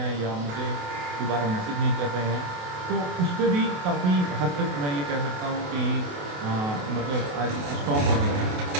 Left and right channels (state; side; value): late; left; 28 ms